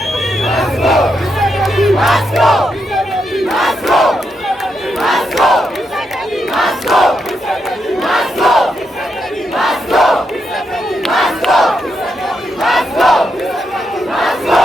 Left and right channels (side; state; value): both; normal; correlation 0.82